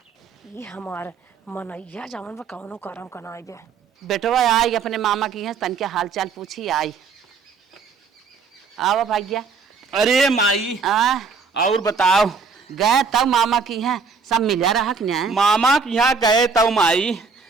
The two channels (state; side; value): quieter; left; 5.1 dB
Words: ये हमार मनैया जवन बा कौनो करम कनाई बे। बेटवा आई अपने मामा की है, तन के हाल चाल पूछी आई। आओ भाग्या। अरे माई और बताओ। गए तब मामा की है, सब मिला रहा कि नहीं? मामा के यहाँ गए तब माई,